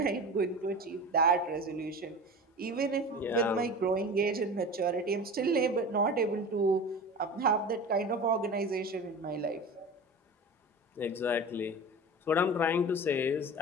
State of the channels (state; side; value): normal; both; correlation 0.33